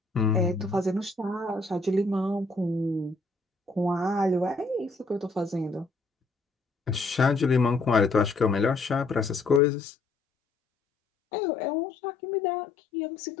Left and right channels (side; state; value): right; drops out; at 9.6 s